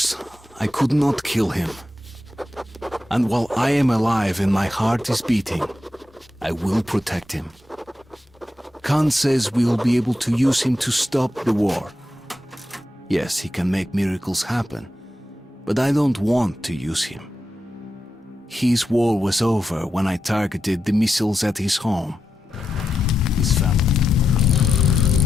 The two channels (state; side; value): normal; both; correlation 0.87